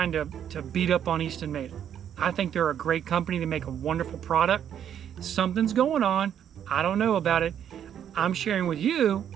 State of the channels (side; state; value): left; quieter; 9.4 dB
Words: to beat up on Eastonmade. I think they're a great company. They make a wonderful product. Something's going on. I don't know about it. I'm sharing with you